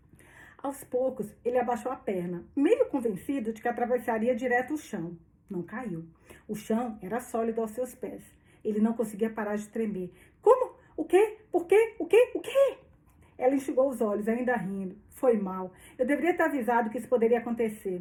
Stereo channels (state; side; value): identical; both; correlation 1.00